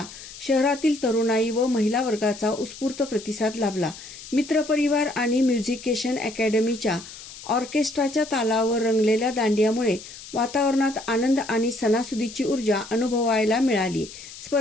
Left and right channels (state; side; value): noise; left; hiss, 15 dB below the sound